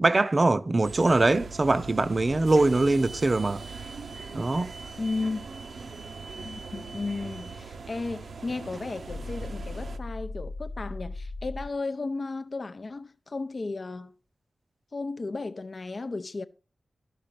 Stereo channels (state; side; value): normal; both; correlation 0.96